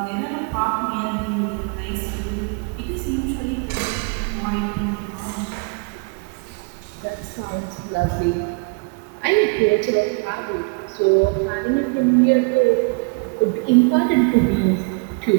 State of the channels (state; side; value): quieter; left; 32.5 dB